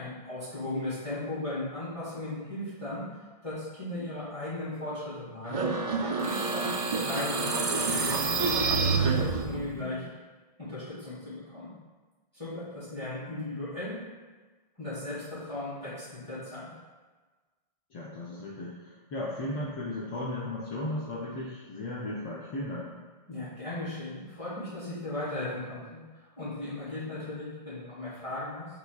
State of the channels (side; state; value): right; late; 1.6 ms